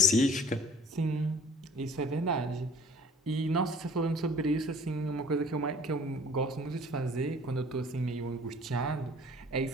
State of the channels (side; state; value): both; normal; correlation 0.51